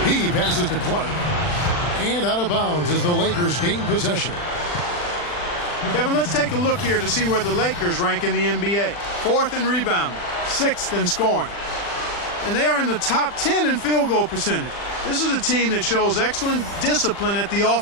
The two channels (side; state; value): right; late; 40 ms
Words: He passes to Clark, and out of bounds as the Lakers gain possession. Kevin, let's take a look here to see where the Lakers rank in the NBA. 4th in rebounding, 6th in scoring. And they are in the top 10 in field goal percentage. This is a team that shows excellent discipline at the